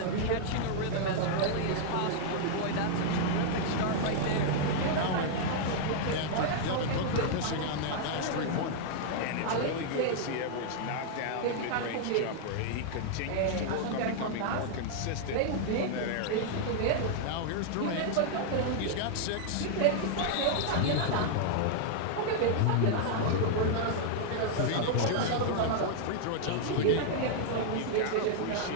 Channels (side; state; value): both; different; correlation -0.01